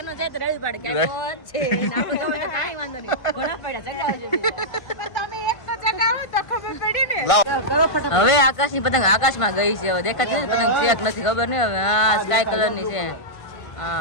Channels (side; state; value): right; late; 1.5 ms